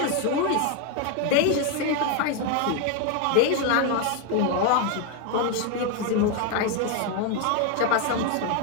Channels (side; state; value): both; different; correlation 0.01